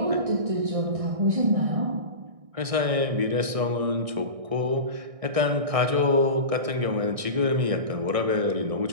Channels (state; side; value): late; left; 1.6 ms